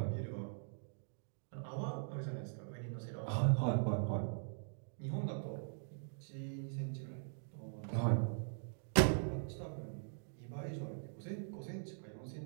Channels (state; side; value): silent; left; digital silence